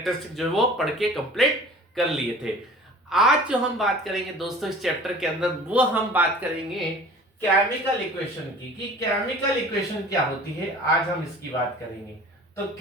जो है वो पढ़ के कंप्लीट कर लिए थे। आज जो हम बात करेंगे दोस्तों इस चैप्टर के अंदर, वो हम बात करेंगे केमिकल इक्वेशन की, कि केमिकल इक्वेशन क्या होती है। आज हम इसकी बात करेंगे। तो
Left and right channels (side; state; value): both; normal; correlation 0.45